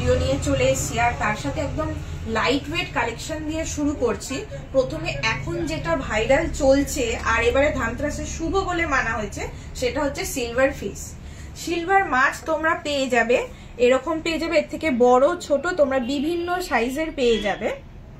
নিয়ে চলে এসেছি আর তার সাথে একদম লাইট ওয়েট কালেকশন দিয়ে শুরু করছি। প্রথমে এখন যেটা ভাইরাল চলছে আর এবারে ধনতেরাসের শুভ বলে মানা হয়েছে সেটা হচ্ছে সিলভার ফিশ। সিলভার মাছ তোমরা পেয়ে যাবে, এরকম পেয়ে যাবে, এর থেকে বড় ছোট তোমরা বিভিন্ন সাইজের পেয়ে যাবে।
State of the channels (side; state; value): both; identical; correlation 1.00